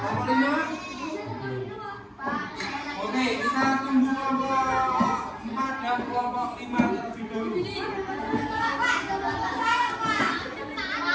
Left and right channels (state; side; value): identical; both; correlation 1.00